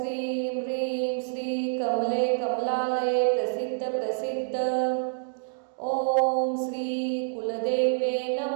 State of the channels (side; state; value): left; silent; digital silence